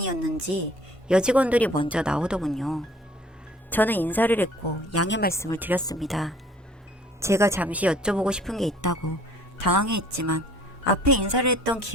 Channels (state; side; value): normal; both; correlation 0.54